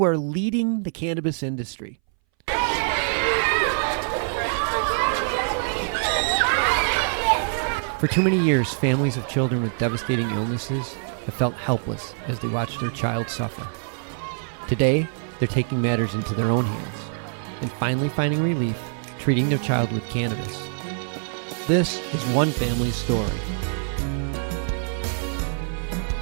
are leading the cannabis industry. For too many years, families of children with devastating illnesses have felt helpless as they watch their child suffer. Today, they're taking matters into their own hands and finally finding relief treating their child with cannabis. This is one family's story.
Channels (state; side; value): silent; left; 61 dB below the other